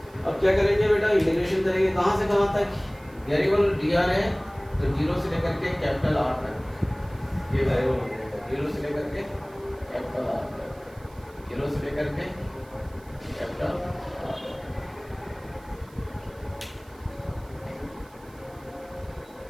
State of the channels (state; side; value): noise; right; hiss, 27 dB below the sound